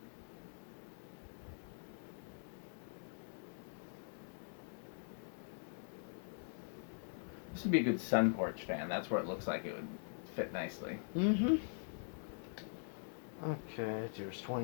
This would be a good sun porch fan. That's where it looks like it would fit nicely. Mm-hmm. Okay, here's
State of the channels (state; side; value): silent; right; digital silence